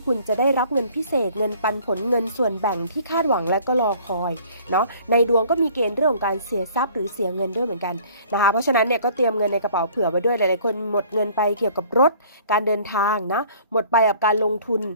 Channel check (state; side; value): inverted; both; correlation -0.53